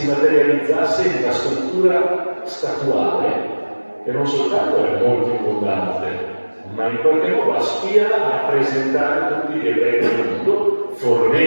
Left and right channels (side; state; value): both; inverted; correlation -1.00